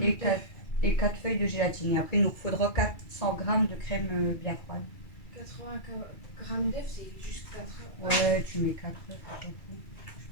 et 4 feuilles de gélatine. Et après il nous faudra 400 g de crème bien froide. 80 g d'œufs, c'est juste 4. Ouais, tu mets 4 œufs, on s'en fout. Je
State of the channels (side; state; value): right; late; 2.3 ms